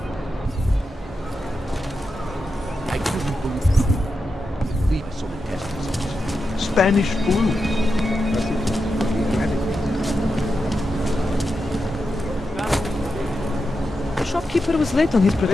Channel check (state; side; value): normal; both; correlation 0.88